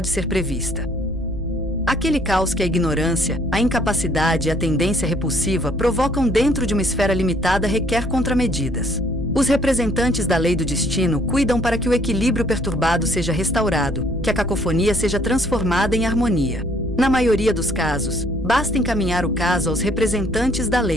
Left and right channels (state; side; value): normal; both; correlation 0.62